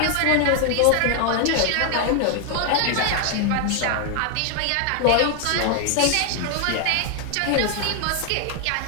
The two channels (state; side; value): different; both; correlation 0.00